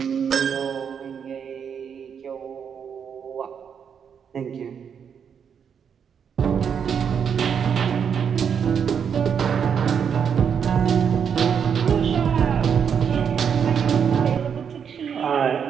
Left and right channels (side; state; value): left; quieter; 7.3 dB